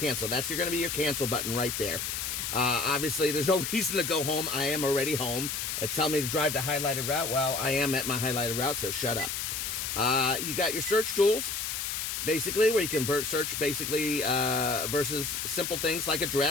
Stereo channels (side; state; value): left; noise; hiss, 3 dB below the sound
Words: That's going to be your cancel button right there. Obviously, there's no reason to go home. I am already home. It's telling me to drive to highlighted route. Well, I am at my highlighted route, so shut up. You got your search tools, basically, where you can search basically versus simple things like